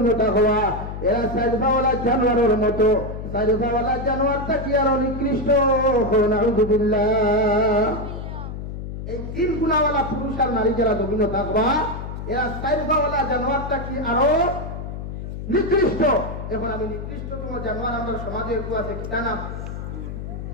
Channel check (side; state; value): left; noise; hum, 7 dB below the sound